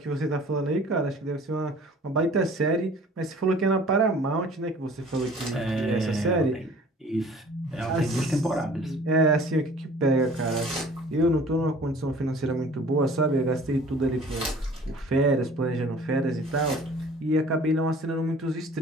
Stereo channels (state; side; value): normal; both; correlation 0.49